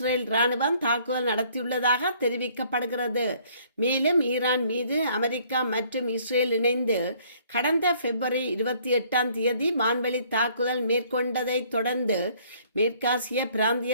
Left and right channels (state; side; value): inverted; both; correlation -0.60